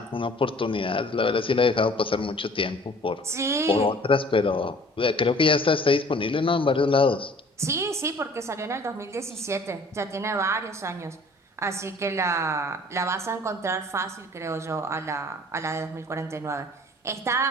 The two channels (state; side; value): normal; both; correlation 0.51